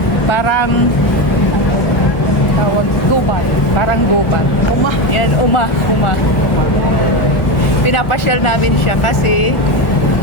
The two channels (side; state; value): right; late; 1.7 ms